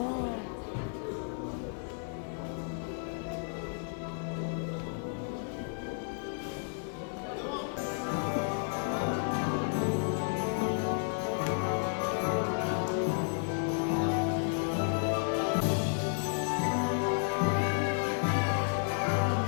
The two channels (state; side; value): silent; right; 56 dB below the other